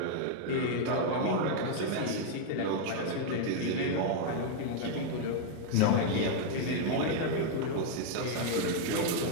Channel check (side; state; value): both; different; correlation 0.00